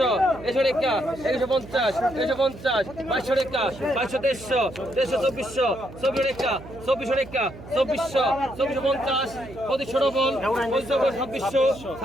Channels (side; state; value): right; noise; hum, 16 dB below the sound